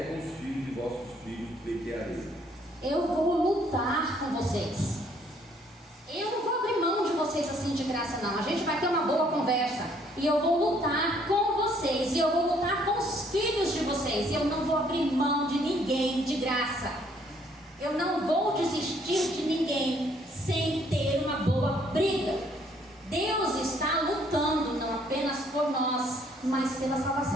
com os filhos de vossos filhos pleitearei. Eu vou lutar com vocês. Eu não vou abrir mão de vocês assim de graça, não. A gente vai ter uma boa conversa. E eu vou lutar com vocês. E eu vou lutar com os filhos de vocês. E eu não vou abrir mão de ninguém de graça. Eu não vou desistir de ninguém sem ter uma boa briga. Deus está lutando não apenas por nós, mas pela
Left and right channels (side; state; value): both; normal; correlation 0.64